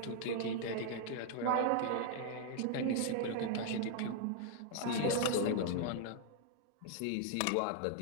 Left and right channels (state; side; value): different; both; correlation 0.00